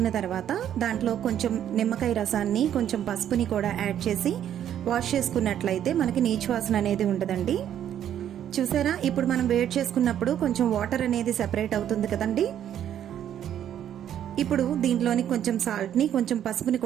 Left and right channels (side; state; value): left; quieter; 10.3 dB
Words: తర్వాత దాంట్లో కొంచెం నిమ్మకాయ రసాన్ని, కొంచెం పసుపుని కూడా యాడ్ చేసి వాష్ చేసుకున్నట్లయితే మనకి నీచు వాసన అనేది ఉండదండి. చూసారా, ఇప్పుడు మనం వేడి చేసుకున్నప్పుడు కొంచెం వాటర్ అనేది సెపరేట్ అవుతుంది కదండి. ఇప్పుడు దీంట్లోని కొంచెం సాల్ట్ని, కొంచెం పసుపుని